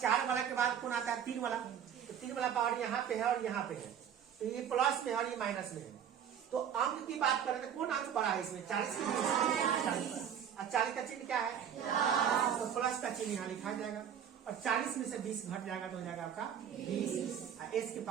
वाला के बाद कौन आता है? 3 वाला। तो 3 वाला पावर यहाँ पे है और यहाँ पे है, तो ये प्लस में है और ये माइनस में है। तो अंक की बात करें तो कौन अंक बड़ा है इसमें? 40 की 40। और 40 का चिन्ह क्या है? तो प्लस का चिन्ह यहाँ लिखा जाएगा और 40 में से 20 घट जाएगा तो हो जाएगा आपका 20, एस के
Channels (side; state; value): left; quieter; 8.9 dB